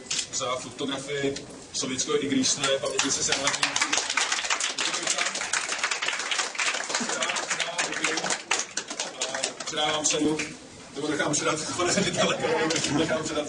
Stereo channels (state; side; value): identical; both; correlation 1.00